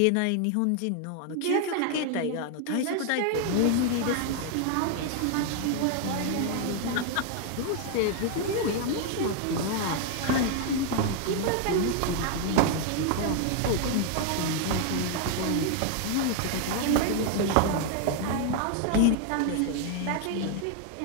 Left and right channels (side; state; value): both; different; correlation 0.00